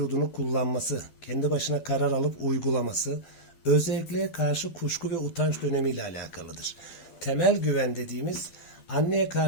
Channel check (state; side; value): late; right; 12 ms